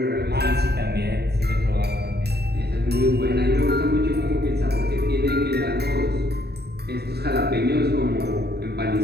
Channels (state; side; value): late; left; 0.47 ms